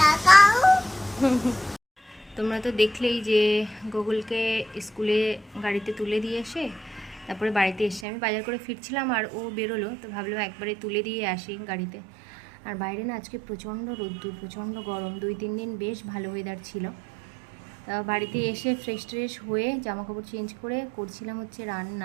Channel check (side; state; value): left; drops out; at 8.1 s